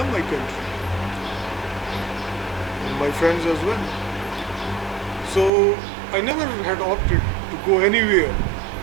my country and my friends as well. So I never had opted to go anywhere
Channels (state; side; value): drops out; left; at 5.5 s